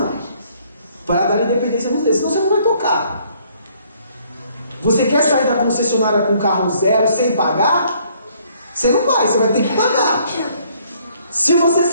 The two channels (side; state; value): both; inverted; correlation -0.63